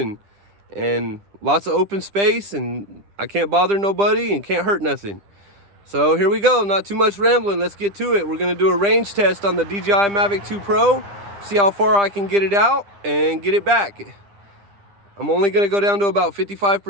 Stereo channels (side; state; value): left; late; 10 ms